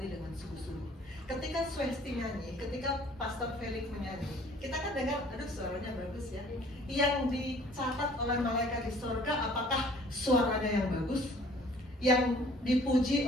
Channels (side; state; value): both; normal; correlation 0.54